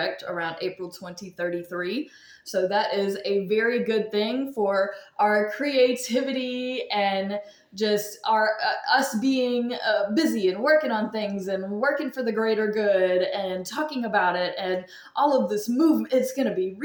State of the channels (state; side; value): identical; both; correlation 1.00